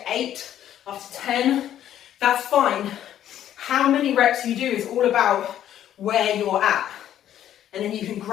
8, after 10, that's fine. How many reps you do is all about where you're at, and then you can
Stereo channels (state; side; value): quieter; right; 11.2 dB